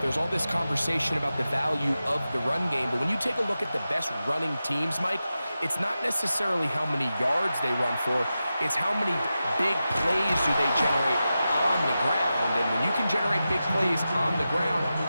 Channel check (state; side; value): inverted; both; correlation -0.92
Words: all this conversation about the value of the run game, but when you take a look at the best running teams, Mike, it's not necessarily how many yards they run for, it's how many big plays do they generate on the ground. And when you can generate big plays on the ground,